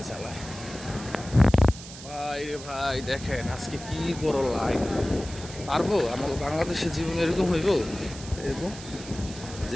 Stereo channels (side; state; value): right; noise; hiss, 14 dB below the sound